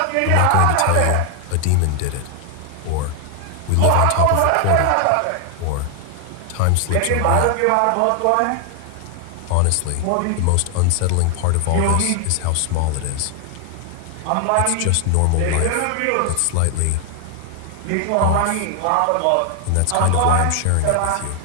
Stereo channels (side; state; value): both; different; correlation 0.00